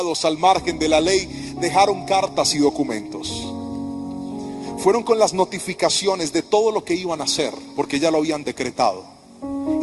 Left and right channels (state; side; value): identical; both; correlation 1.00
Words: al margen de la ley, dejaron cartas y documentos. Fueron con las notificaciones de todo lo que iban a hacer, porque ya lo habían decretado.